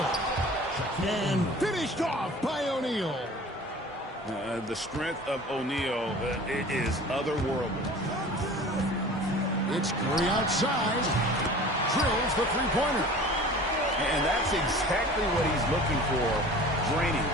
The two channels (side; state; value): both; normal; correlation 0.42